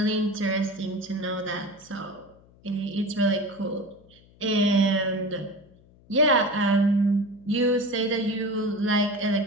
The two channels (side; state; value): left; noise; hum, 27 dB below the sound